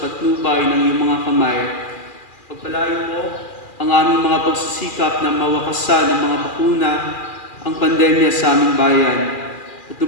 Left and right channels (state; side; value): late; right; 2.4 ms